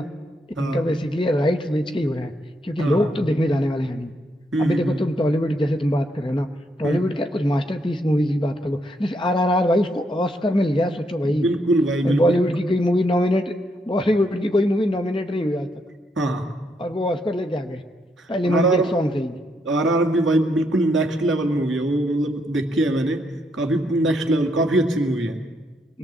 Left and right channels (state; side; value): normal; both; correlation 0.77